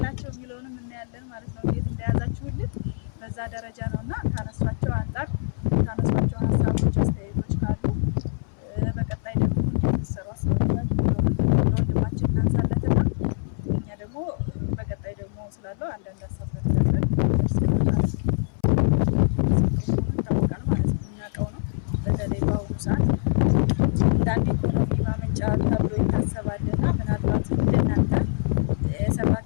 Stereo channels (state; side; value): silent; right; 62 dB below the other